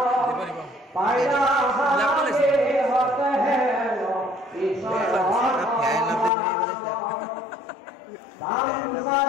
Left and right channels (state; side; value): drops out; right; at 6.3 s